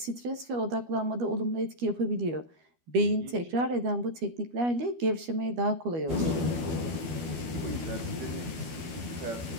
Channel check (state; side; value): late; left; 12 ms